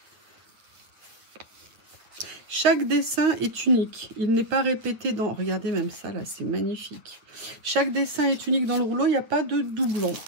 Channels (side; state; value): left; late; 8.8 ms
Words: Chaque dessin est unique. Il n'est pas répété dans... Regardez même ça, là, c'est magnifique. Chaque dessin est unique dans le rouleau, il n'y a pas de doublon.